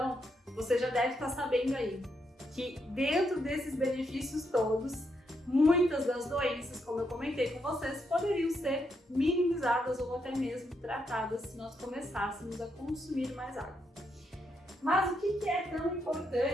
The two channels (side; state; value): both; normal; correlation 0.79